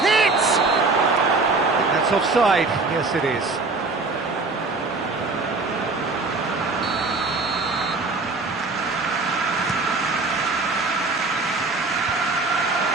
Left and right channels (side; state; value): left; quieter; 3.7 dB